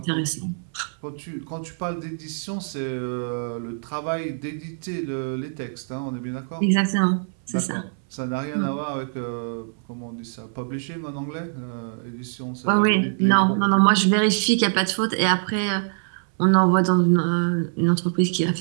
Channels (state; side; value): silent; left; 59 dB below the other